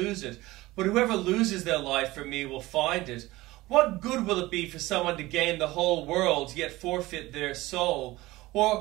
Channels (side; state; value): left; quieter; 19.0 dB